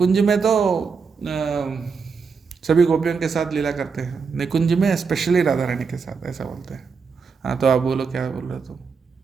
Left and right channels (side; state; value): left; quieter; 5.4 dB